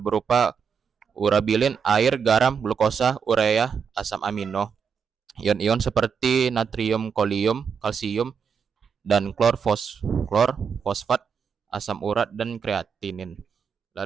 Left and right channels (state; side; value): quieter; left; 6.6 dB